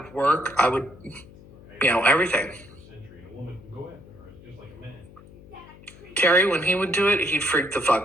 work. I would, everything. Terry, when he would do it, he'd freak the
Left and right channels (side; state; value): left; noise; hum, 21 dB below the sound